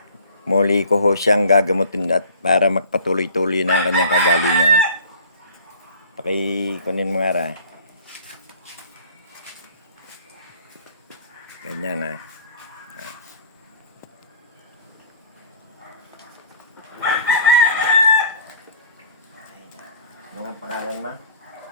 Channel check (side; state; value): both; inverted; correlation -0.47